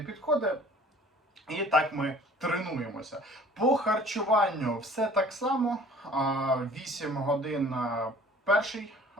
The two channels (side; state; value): both; normal; correlation 0.50